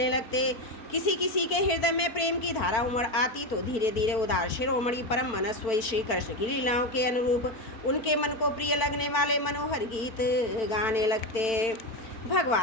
लगते। किसी किसी के हृदय में प्रेम की धारा उमड़ आती तो धीरे धीरे उदार शिरोमणि परम मनस्वी श्री कृष्ण की लीलाओं के अनुरूप उनके मन को प्रिय लगने वाले मनोहर गीत गाने लगते।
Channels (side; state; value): right; late; 4.5 ms